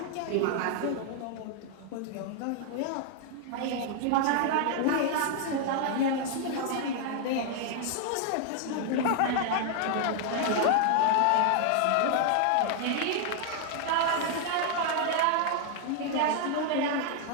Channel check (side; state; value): both; different; correlation 0.00